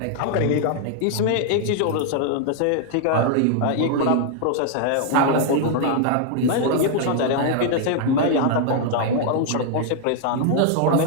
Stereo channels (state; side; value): different; both; correlation 0.00